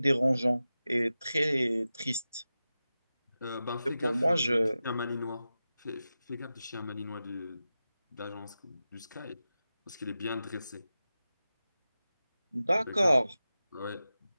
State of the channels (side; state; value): both; inverted; correlation -0.94